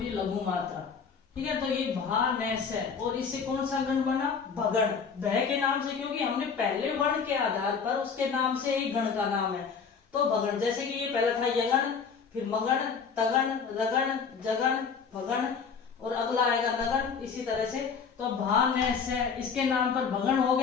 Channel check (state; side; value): quieter; right; 6.0 dB